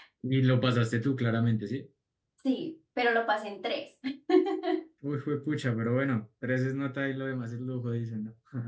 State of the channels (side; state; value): both; identical; correlation 1.00